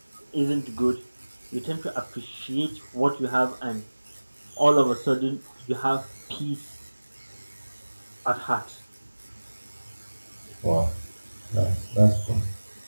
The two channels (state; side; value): inverted; both; correlation -1.00